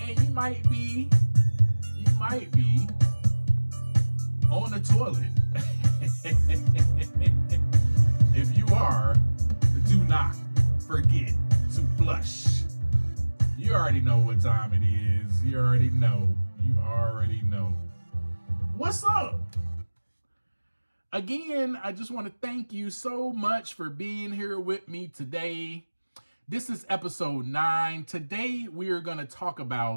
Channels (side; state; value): both; inverted; correlation -1.00